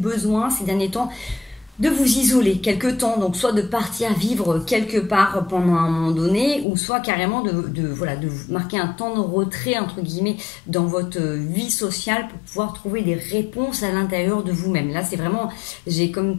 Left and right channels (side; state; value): right; drops out; at 6.7 s